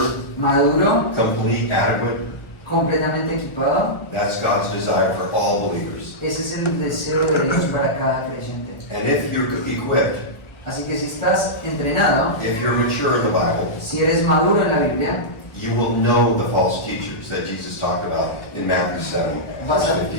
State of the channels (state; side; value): late; right; 1.4 ms